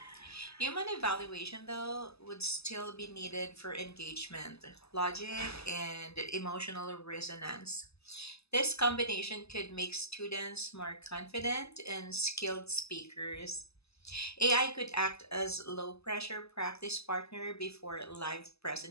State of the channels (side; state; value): right; late; 0.79 ms